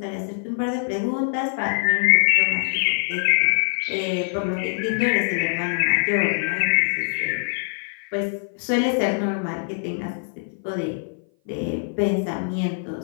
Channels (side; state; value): right; silent; 57 dB below the other